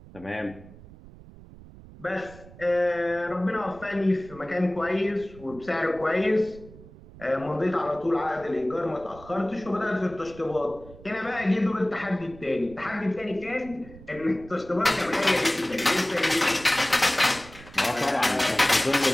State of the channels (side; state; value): right; noise; rumble, 19 dB below the sound